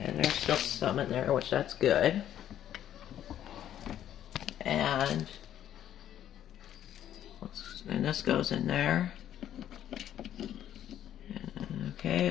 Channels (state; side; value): quieter; right; 11.0 dB